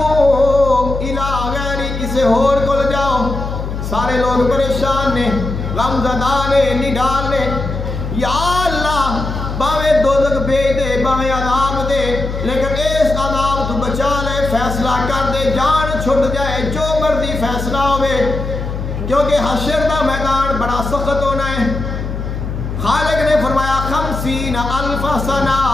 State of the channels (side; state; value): left; noise; hum, 5 dB below the sound